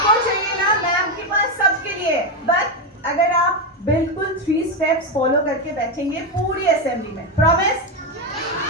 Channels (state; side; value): normal; both; correlation 0.09